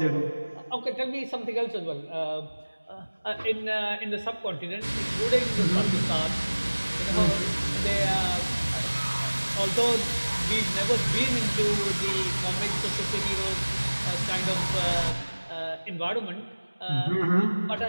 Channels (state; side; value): inverted; both; correlation -1.00